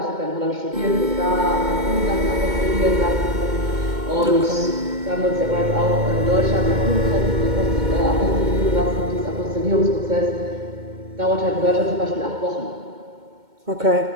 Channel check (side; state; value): left; late; 2.2 ms